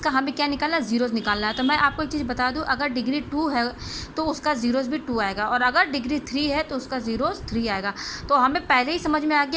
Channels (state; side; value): identical; both; correlation 1.00